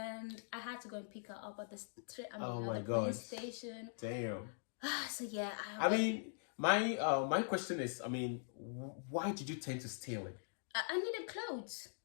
I had to go and pick her up at the police station. Damn. So yeah. I mean, my question is, I mean, why did you tend to steal it? I needed clothes.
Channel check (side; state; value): right; silent; digital silence